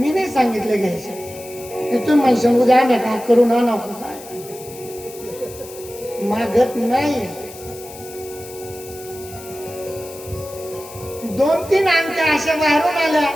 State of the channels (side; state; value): left; noise; hiss, 17 dB below the sound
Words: नाही सांगितले घ्यायचे. तुम्ही म्हणशाल उद्या आणा का करून आणा, काय मागत नाही. 2-3 अंगठ्या अशा बाहेरून आल्या,